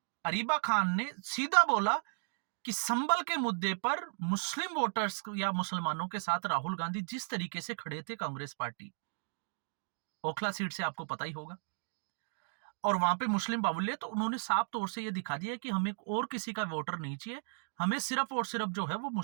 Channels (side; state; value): left; silent; digital silence